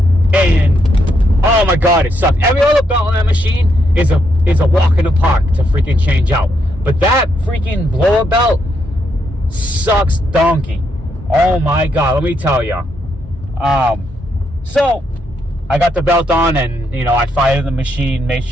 And oh my god, it sucks. Every other belt on that machine is a walk in the park to freaking change out. But that freaking blower belt sucks donkey. Oh my god, let me tell you. So I got the belt on, and I fired the machine, made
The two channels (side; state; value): both; normal; correlation 0.78